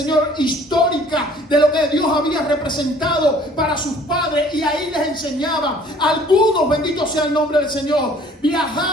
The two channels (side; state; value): both; normal; correlation 0.55